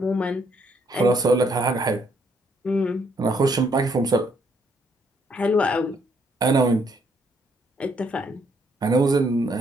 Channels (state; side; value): normal; both; correlation 0.70